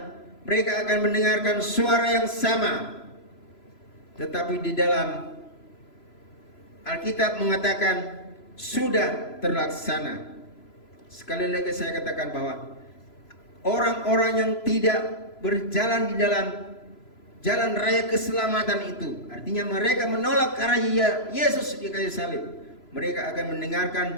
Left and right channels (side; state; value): right; late; 3.0 ms